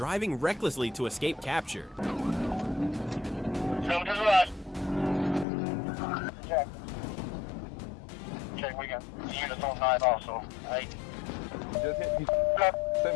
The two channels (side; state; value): right; drops out; at 5.5 s